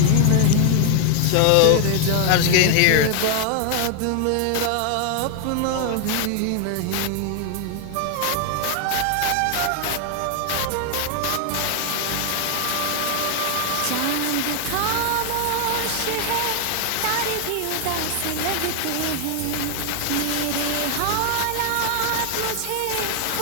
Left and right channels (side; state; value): both; different; correlation 0.00